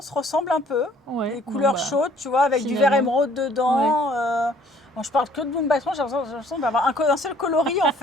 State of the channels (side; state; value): both; normal; correlation 0.58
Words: ressemble un peu. Ouais. Des bon, couleurs bah, chaudes, tu vois, avec du vert finalement. émeraude dedans. Bon, je parle que de Mumbai Trans, j'ai l'impression d'avoir un seul coloris en